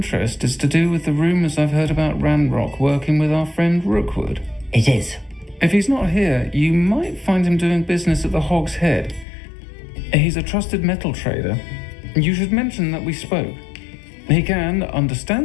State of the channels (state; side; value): drops out; right; at 9.2 s